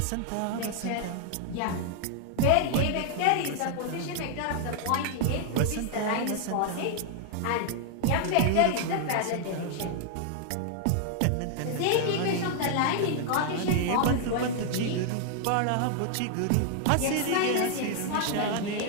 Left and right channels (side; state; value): both; different; correlation 0.00